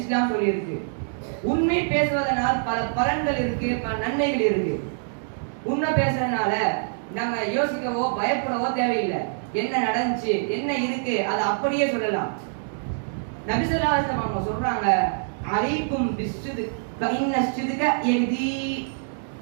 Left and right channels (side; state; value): left; silent; digital silence